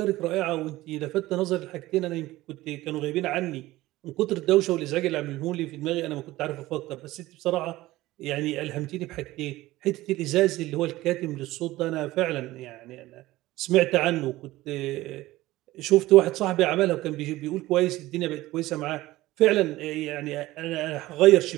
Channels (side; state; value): left; quieter; 17.5 dB